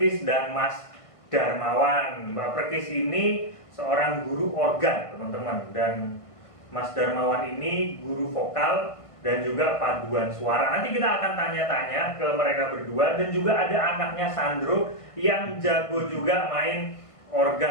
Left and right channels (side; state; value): right; late; 1.5 ms